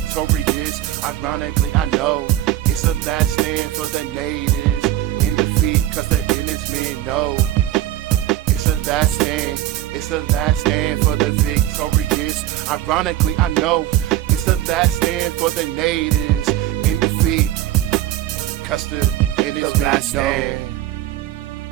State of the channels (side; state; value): left; quieter; 13.7 dB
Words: Ironically, I know it's the last stand for the natives in defeat, cause the innocent men know. It's the last stand, it's the last stand for the victorious. Ironically, I know it's the last stand for the natives in defeat, Custer and his men know.